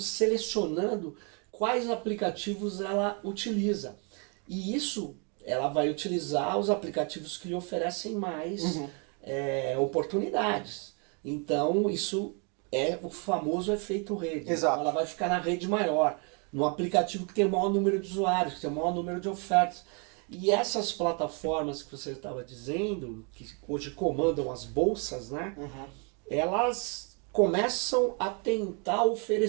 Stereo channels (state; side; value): quieter; left; 35.7 dB